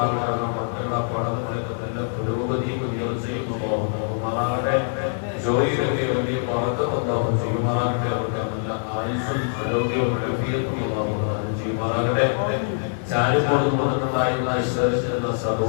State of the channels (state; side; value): silent; right; digital silence